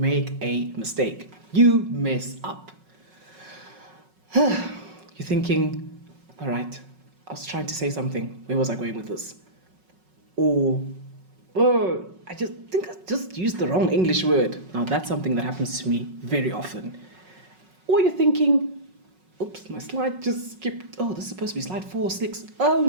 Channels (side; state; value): left; late; 5.4 ms